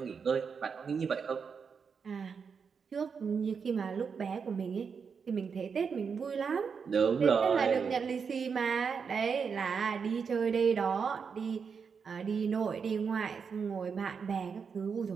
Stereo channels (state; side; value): quieter; left; 6.0 dB